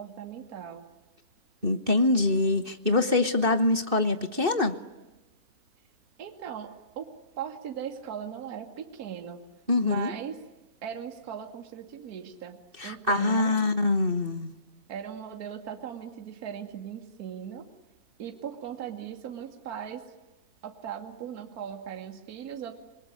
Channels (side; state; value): left; late; 2.6 ms